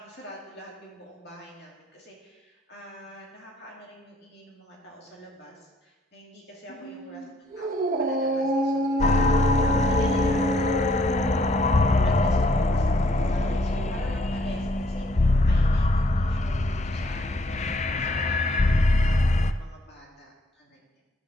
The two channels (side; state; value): both; normal; correlation 0.67